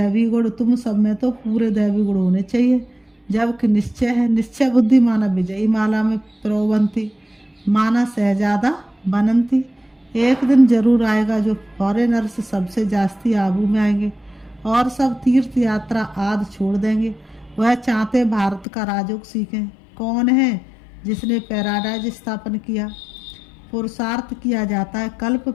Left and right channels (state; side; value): drops out; right; at 18.7 s